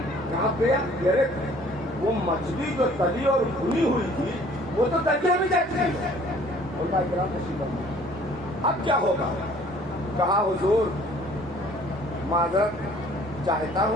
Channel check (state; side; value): normal; both; correlation 0.55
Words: कहाँ पे? अरे वो मछली जो तली और भुनी हुई थी वो तो दरिया में जाती है। अब क्या होगा? कहा हुजूर माजरत चाहता